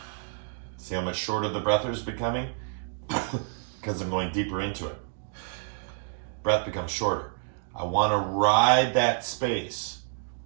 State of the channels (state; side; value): silent; left; 59 dB below the other